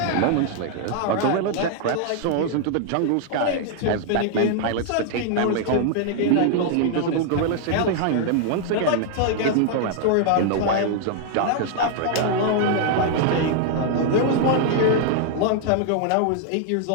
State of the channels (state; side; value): different; both; correlation 0.00